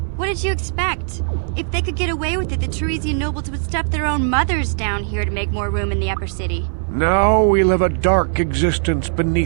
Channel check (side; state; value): left; silent; digital silence